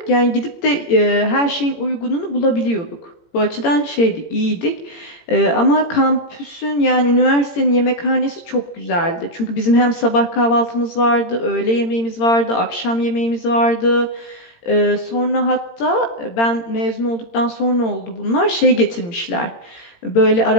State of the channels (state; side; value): late; right; 18 ms